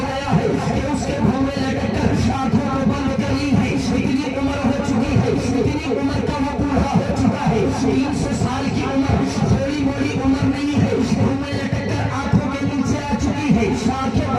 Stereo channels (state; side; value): identical; both; correlation 1.00